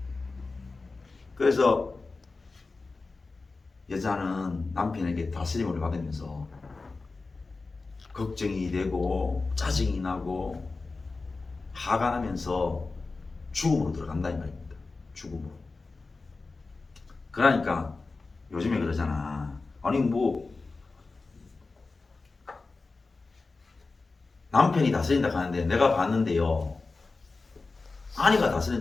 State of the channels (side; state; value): right; quieter; 3.8 dB